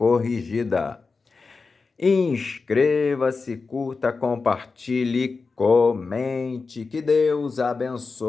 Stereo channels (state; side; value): quieter; right; 4.4 dB